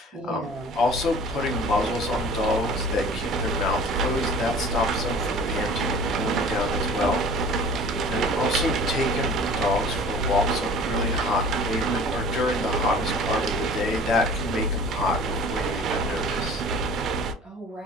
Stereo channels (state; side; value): normal; both; correlation 0.45